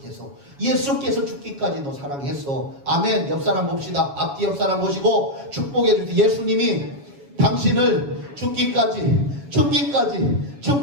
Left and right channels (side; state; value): left; late; 7.1 ms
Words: 예수께서 죽기까지 너 사랑했어. 아멘. 옆 사람 봅시다. 앞뒤 옆 사람 보시고 축복해 주세요. 예수님이 당신을 죽기까지